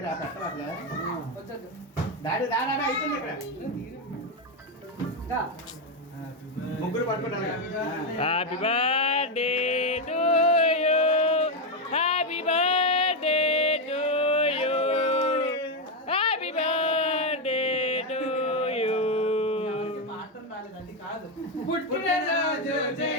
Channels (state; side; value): normal; both; correlation 0.07